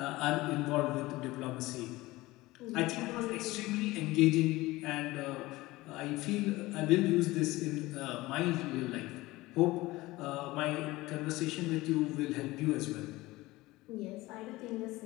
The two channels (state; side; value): quieter; right; 19.5 dB